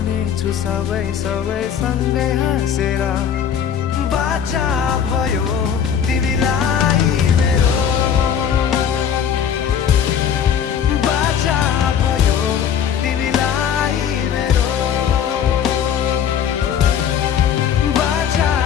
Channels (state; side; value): quieter; right; 8.3 dB